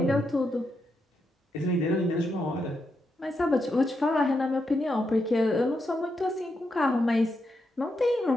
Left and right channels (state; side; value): normal; both; correlation 0.83